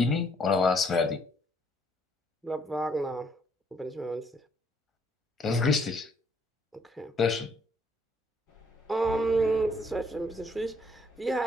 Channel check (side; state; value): both; normal; correlation 0.67